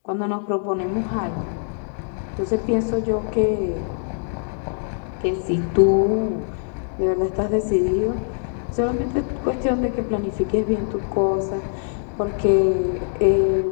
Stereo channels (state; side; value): silent; right; digital silence